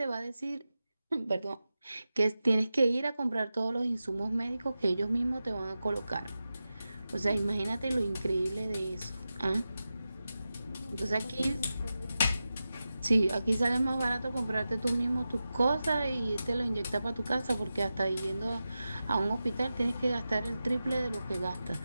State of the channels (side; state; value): both; inverted; correlation -0.93